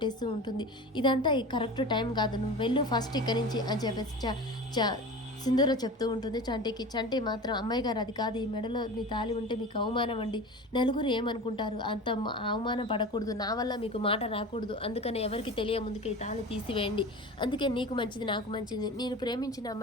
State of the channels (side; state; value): both; normal; correlation 0.33